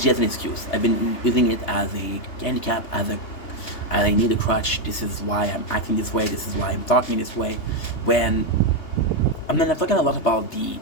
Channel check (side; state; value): right; late; 3.3 ms